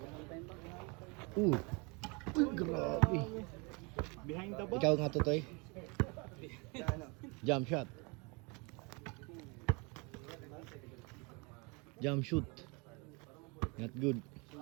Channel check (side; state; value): left; quieter; 29.8 dB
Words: Grabe. Behind the Ikaw nga, Totoy. Jump shot. Jump shoot. Not good.